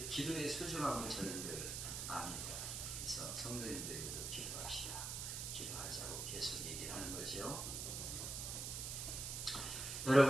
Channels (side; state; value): right; noise; hiss, 3 dB below the sound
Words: 기도의 소중함을 저는 늘 압니다. 그래서 성도님들에게도 기도합시다. 기도하자고 계속 얘기를 하는 거죠.